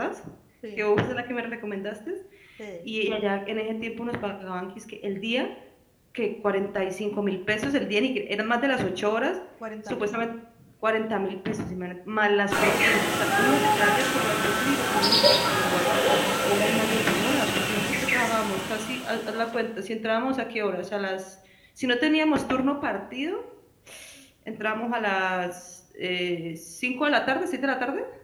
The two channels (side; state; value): both; identical; correlation 1.00